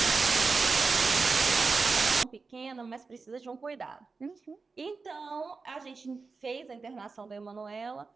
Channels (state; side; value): quieter; left; 4.4 dB